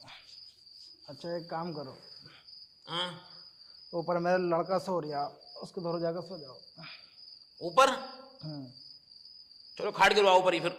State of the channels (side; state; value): both; identical; correlation 1.00